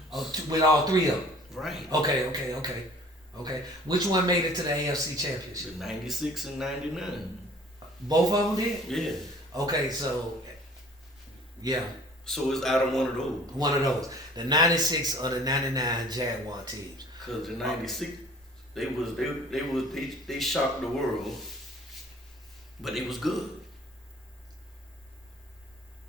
Oh, ones. with all three of them. Right. Okay. Which one made it to the AFC Championship? The 96 and 99. Both of them did? Yeah. Okay, so, yeah, So it's out of one of those. one of those. The 96 or the 99 Jaguar teams. Cause the 96, they shocked the world, but it was good.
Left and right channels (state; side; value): normal; both; correlation 0.50